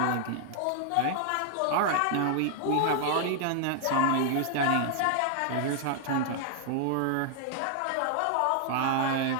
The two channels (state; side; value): different; both; correlation 0.00